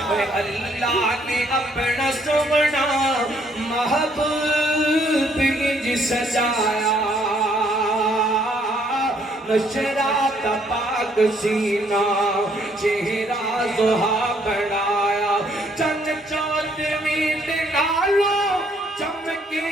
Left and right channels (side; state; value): both; normal; correlation 0.67